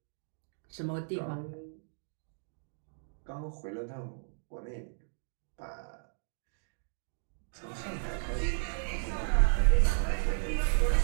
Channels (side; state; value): left; silent; digital silence